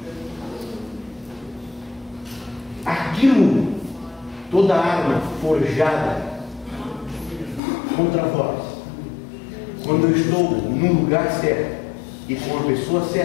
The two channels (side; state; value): right; drops out; at 7.6 s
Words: Aquilo, toda arma forjada contra vós, quando eu estou no lugar certo e com a pessoa